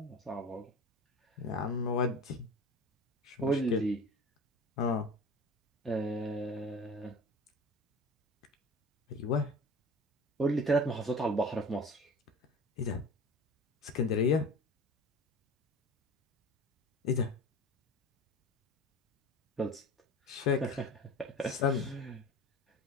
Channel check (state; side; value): normal; both; correlation 0.37